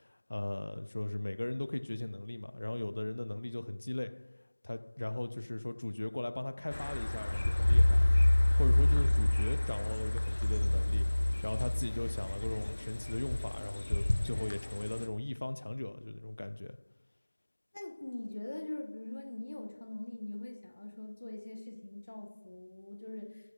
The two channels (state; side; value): inverted; both; correlation -1.00